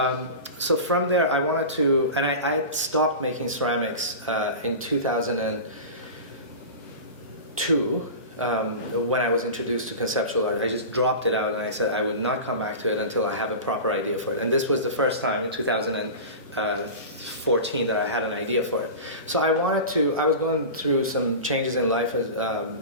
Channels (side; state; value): both; inverted; correlation -0.30